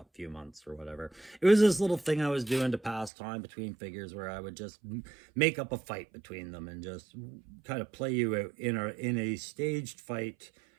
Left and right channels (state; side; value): drops out; left; at 3.1 s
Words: few months or whatever, it was this little thing I was doing to pass time between figures where I would just make up a fight between them and just kind of play you out in a staged fight